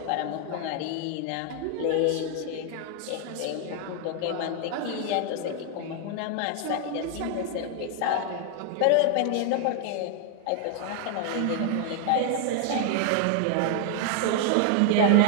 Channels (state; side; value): different; both; correlation 0.00